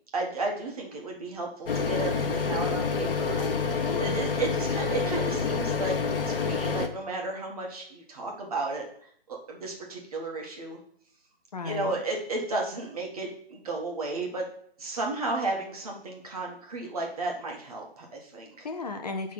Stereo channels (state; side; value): normal; both; correlation 0.12